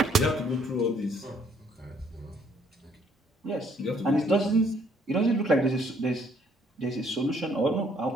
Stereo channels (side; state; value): both; normal; correlation 0.65